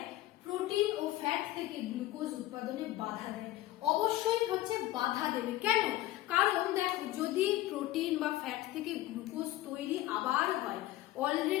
প্রোটিন ও ফ্যাট থেকে গ্লুকোজ উৎপাদনে বাধা দেয়। অবশ্যই হচ্ছে বাধা দেবে, কেন? কারণ দেখো, যদি প্রোটিন বা ফ্যাট থেকে গ্লুকোজ তৈরি আবার হয়,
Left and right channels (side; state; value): right; quieter; 16.0 dB